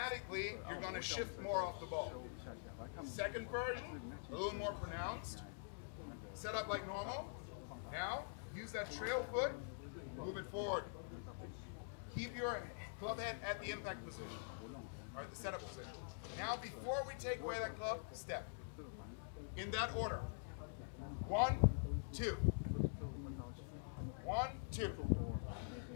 you're going to shift more off the ball. Second version, a little more pronounced. Set up like normal. Now, use that trail foot, move it forward. Keep your club head at the impact position, or at the setup position. Now, before we take away that club, step. In that order. 1, 2. 1, 2.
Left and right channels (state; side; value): silent; right; digital silence